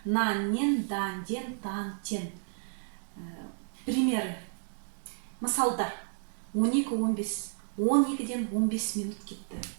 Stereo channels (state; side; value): silent; left; digital silence